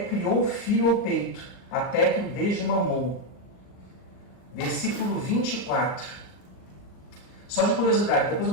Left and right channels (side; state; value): right; late; 39 ms